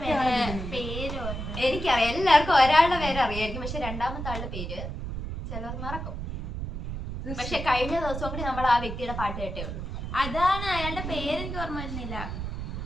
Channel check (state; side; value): noise; right; rumble, 6 dB below the sound